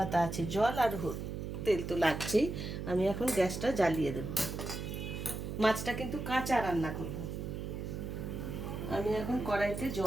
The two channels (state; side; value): noise; right; hum, 5 dB below the sound